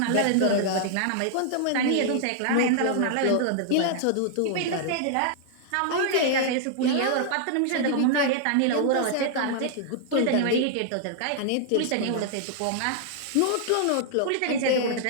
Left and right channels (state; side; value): different; both; correlation -0.01